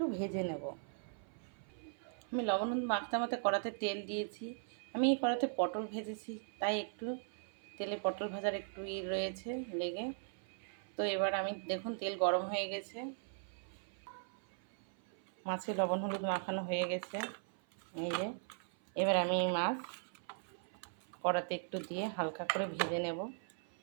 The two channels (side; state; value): left; silent; 52 dB below the other